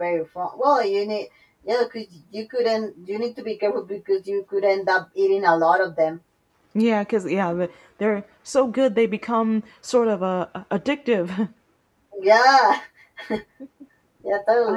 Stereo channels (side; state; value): both; identical; correlation 1.00